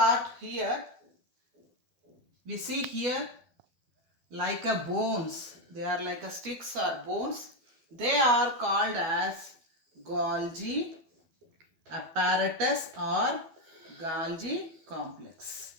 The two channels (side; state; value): left; late; 12 ms